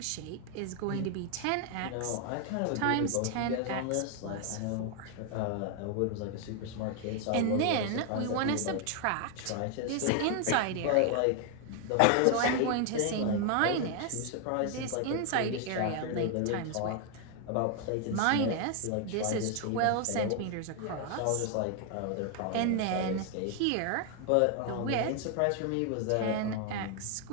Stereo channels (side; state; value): both; different; correlation 0.01